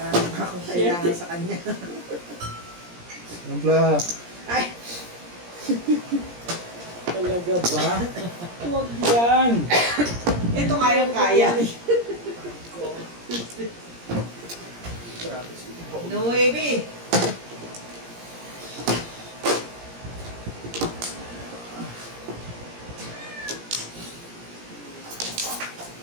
pa akong kailangan sa kanya. Ampla. Ay! Talaga ba? Huwag yan. Ito kayang-kaya. Grabe. No baby.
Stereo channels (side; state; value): left; late; 17 ms